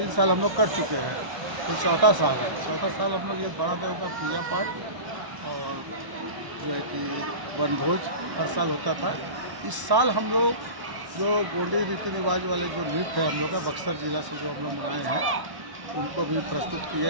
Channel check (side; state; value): left; late; 1.1 ms